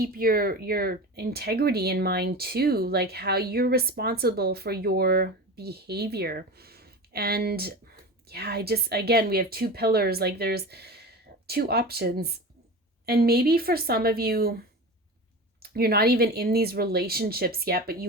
your integrity in mind too, like how you're responsible for your behavior. And yeah, again, we have two pillars, like there's two options. And maybe for some of you, you're not even in these relationships yet, but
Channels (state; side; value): normal; both; correlation 0.30